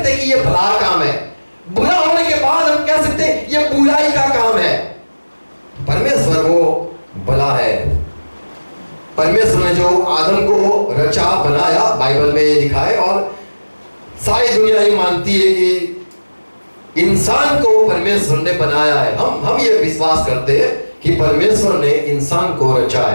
हैं कि ये भला काम है। बुरा होने के बाद हम कह सकते हैं ये बुराई का काम है। परमेश्वर वो भला है। परमेश्वर ने जो आदम को रचा, बनाया, बाइबल में ये लिखा है, और सारी दुनिया ये मानती है कि इंसान को परमेश्वर ने बनाया है। हम ये विश्वास करते हैं कि परमेश्वर ने इंसान को रचा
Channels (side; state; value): both; inverted; correlation -1.00